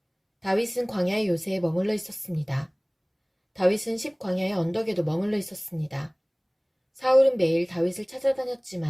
다윗은 광야의 요새에 머물러 있었습니다. 다윗은 십광야의 언덕에도 머물러 있었습니다. 사울은 매일 다윗을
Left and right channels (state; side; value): identical; both; correlation 1.00